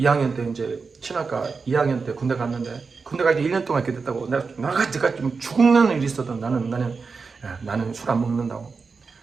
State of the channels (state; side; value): quieter; left; 4.8 dB